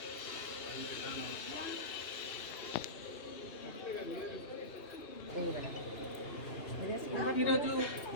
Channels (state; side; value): late; right; 2.8 ms